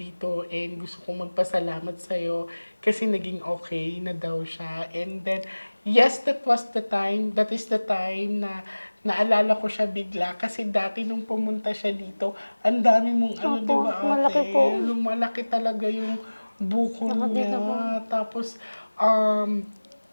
and gusto kong magpasalamat sa'yo kasi naging okay na daw siya. And then, yes, that is the time na naalala ko siya bigla kasi dati nung pumunta siya dito, ang dami mong Opo, di ba malaki ate? po. Lumalaki talaga yung buko Nakadito po. niya. Tapos,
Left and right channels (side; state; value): both; inverted; correlation -1.00